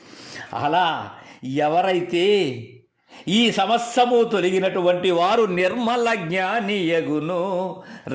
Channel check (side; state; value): both; identical; correlation 1.00